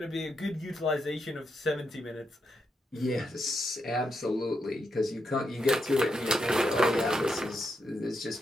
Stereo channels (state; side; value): normal; both; correlation 0.83